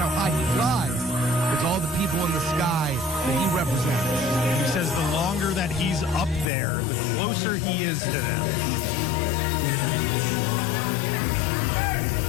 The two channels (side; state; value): right; drops out; at 6.5 s